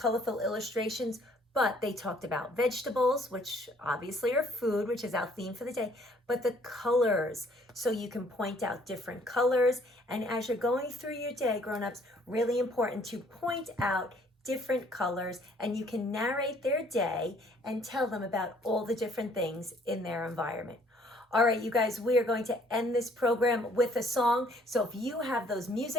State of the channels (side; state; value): both; normal; correlation 0.61